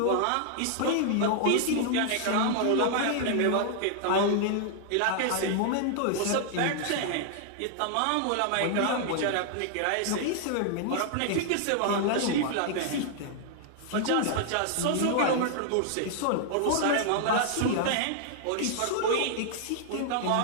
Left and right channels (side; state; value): both; different; correlation 0.00